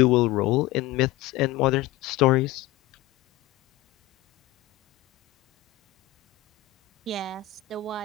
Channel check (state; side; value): quieter; right; 14.3 dB